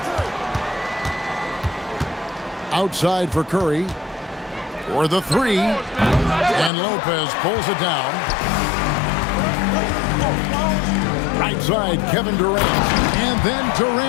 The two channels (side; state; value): right; drops out; at 6.7 s